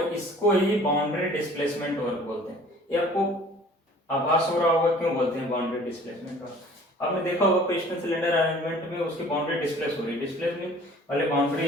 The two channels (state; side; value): normal; both; correlation 0.50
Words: इसको ही बाउंड्री डिस्प्लेसमेंट वर्क बोलते हैं। ये आपको आभास हो रहा होगा क्यों बोलते हैं बाउंड्री डिस्प्लेसमेंट वर्क। आपने देखा होगा पिस्टन सिलेंडर अरेंजमेंट में उसकी बाउंड्री डिस्प्लेस हो रही है, डिस्प्लेसमेंट वाले बाउंड्री